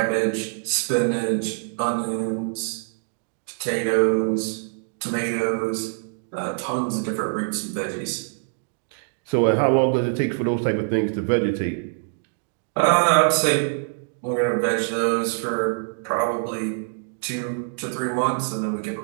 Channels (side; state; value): left; silent; digital silence